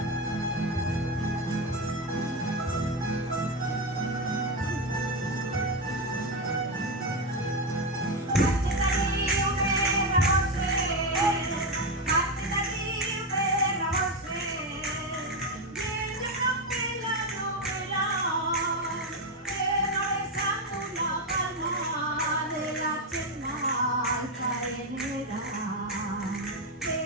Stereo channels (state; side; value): normal; both; correlation 0.11